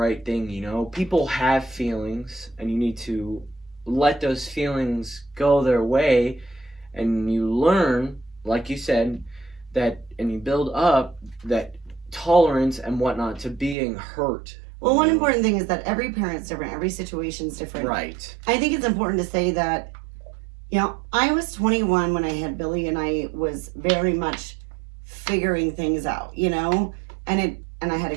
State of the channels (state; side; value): drops out; left; at 13.8 s